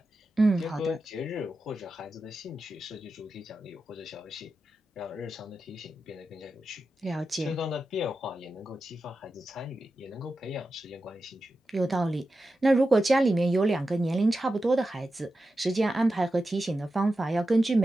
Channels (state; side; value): normal; both; correlation 0.91